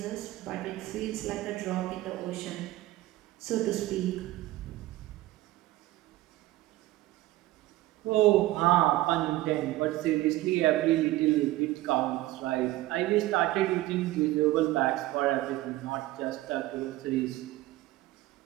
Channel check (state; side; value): quieter; left; 17.0 dB